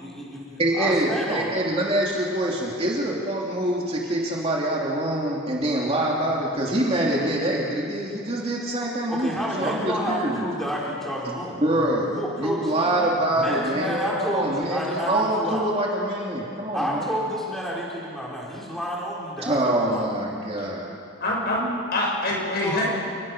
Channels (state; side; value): normal; both; correlation 0.37